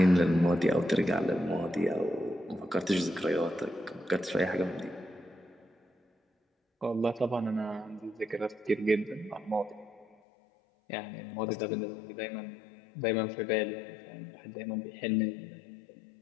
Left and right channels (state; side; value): drops out; right; at 10.2 s